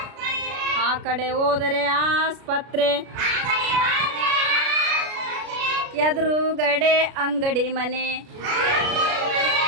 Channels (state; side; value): late; left; 33 ms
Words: ಆ ಕಡೆ ಹೋದರೆ ಆಸ್ಪತ್ರೆ ಎದುರುಗಡೆ ಅಂಗಡಿ ಮನೆ